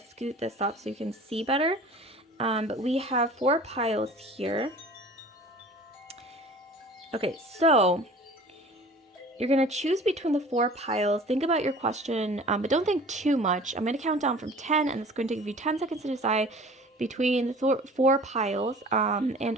scoot this up so you can see better. But we have four piles here. Okay, so you're going to choose between the four piles. Think about your question, but don't think too much. I'm going to count down from 10, and it's going to give you 10 seconds to decide between the four piles.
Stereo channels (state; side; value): normal; both; correlation 0.44